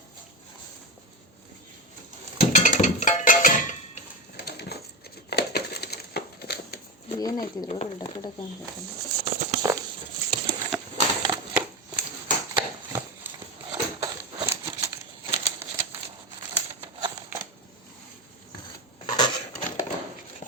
ಏನಾಯ್ತಿದ್ರು ಡಕ್ಕ ಡಕ್ಕ ಅನ್ಬೇಕಲ್ಲ.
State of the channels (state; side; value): normal; both; correlation 0.16